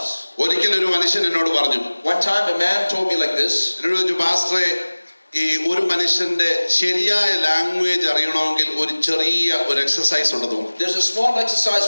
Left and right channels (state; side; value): inverted; both; correlation -1.00